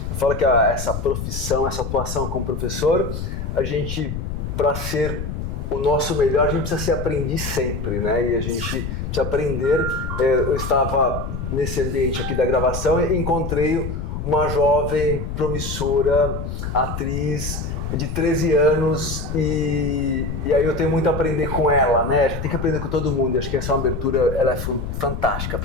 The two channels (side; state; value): left; noise; rumble, 5 dB below the sound